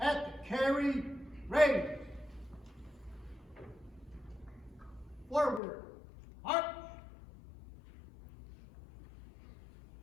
the carry, raise. Forward, march.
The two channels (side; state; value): right; drops out; at 5.6 s